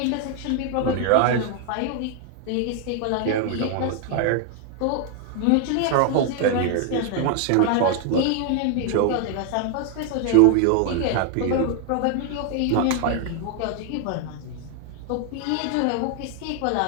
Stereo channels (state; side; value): different; both; correlation 0.00